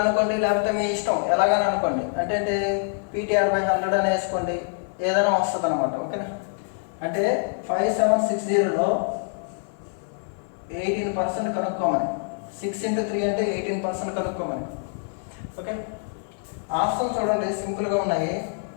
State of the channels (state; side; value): silent; right; digital silence